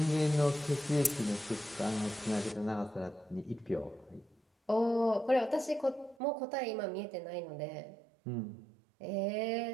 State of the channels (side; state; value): left; drops out; at 6.2 s